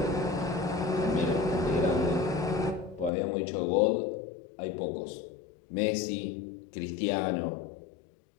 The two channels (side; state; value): right; drops out; at 3.1 s